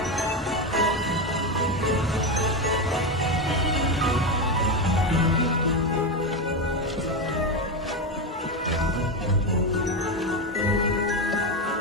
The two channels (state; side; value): normal; both; correlation 0.13